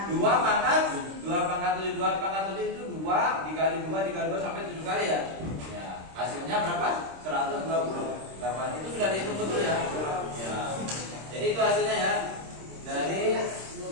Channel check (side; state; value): left; late; 26 ms